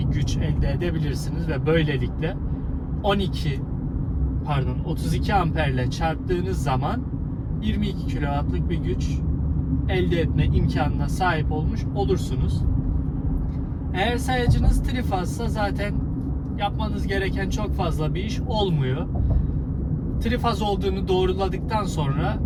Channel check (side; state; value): both; identical; correlation 1.00